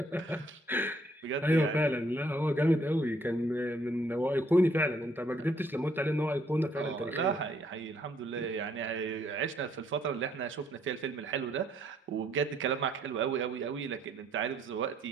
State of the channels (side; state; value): both; normal; correlation 0.67